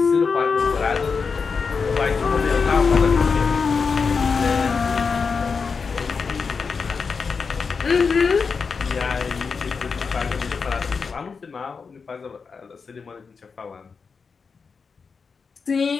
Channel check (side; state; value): right; quieter; 5.2 dB